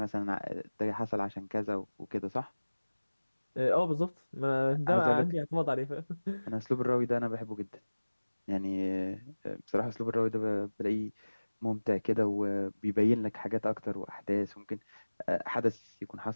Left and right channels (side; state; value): both; inverted; correlation -1.00